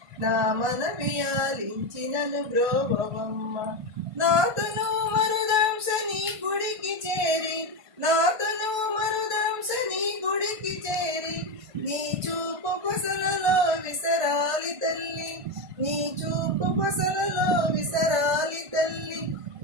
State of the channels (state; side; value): late; left; 1.5 ms